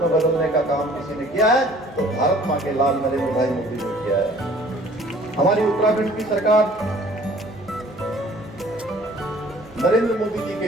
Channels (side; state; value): both; normal; correlation 0.53